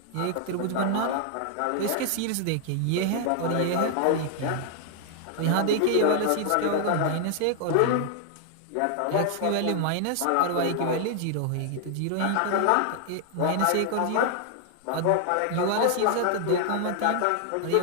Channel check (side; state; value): both; different; correlation 0.00